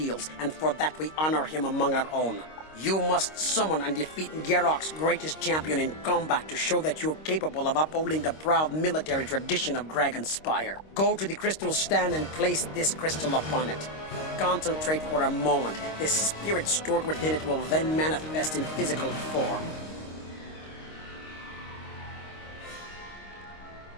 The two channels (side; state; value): right; late; 26 ms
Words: and for that we honor him among our own. You must summon and defeat Garrock's greatest champion in combat to show that you're capable of upholding the proud military tradition of Dragonspire. Go to the crystal stand and place this crystal upon it. Concentrate for a moment. The spirit stored within it will then manifest in physical form.